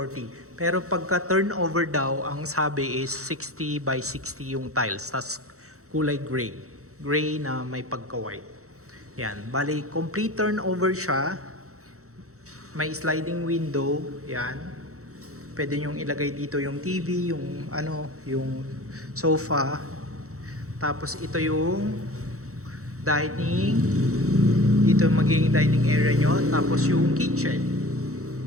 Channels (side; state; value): left; late; 0.65 ms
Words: Pero pagka turnover daw, ang sabi is 60 by 60 yung tiles. Tapos kulay gray. Gray na may pagka-white. Yan. Bale, complete turnover siya. May sliding window. Yan. Pwede nyong ilagay dito yung TV, yung yung sofa. Tapos ito yung dining. Dito magiging dining area nyo. Tapos yung kitchen.